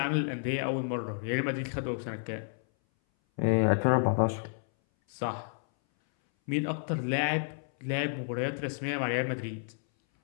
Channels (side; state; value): right; silent; 57 dB below the other